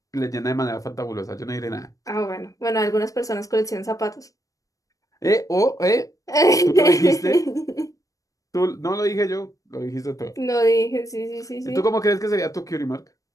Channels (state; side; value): late; right; 0.16 ms